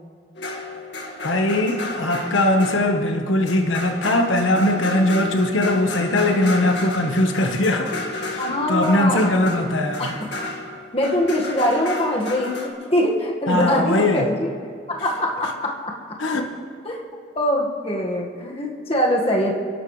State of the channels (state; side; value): normal; both; correlation 0.39